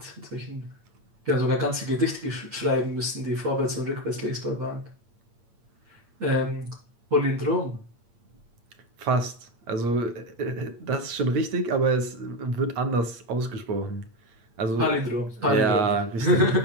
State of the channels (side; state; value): left; late; 8.7 ms